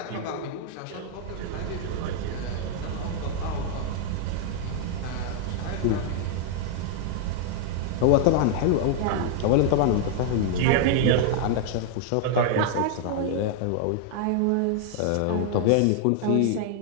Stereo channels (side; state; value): both; different; correlation 0.00